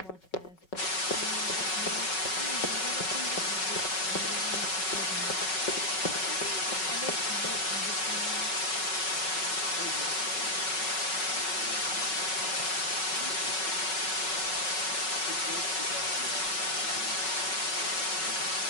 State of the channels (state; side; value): late; right; 5.4 ms